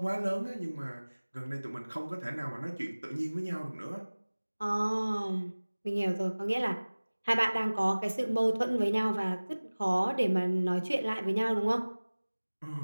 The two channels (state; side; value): inverted; both; correlation -1.00